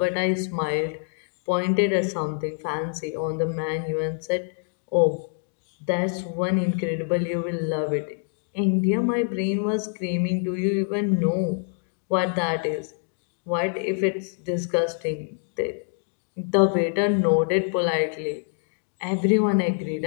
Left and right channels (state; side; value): silent; right; 61 dB below the other